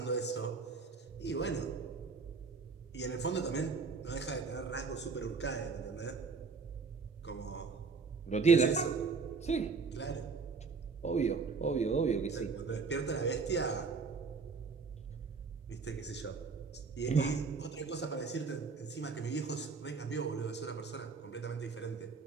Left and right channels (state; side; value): quieter; left; 4.7 dB